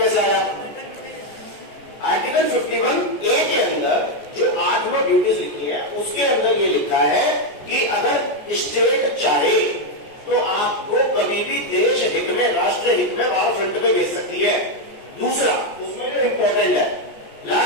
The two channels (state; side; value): late; right; 14 ms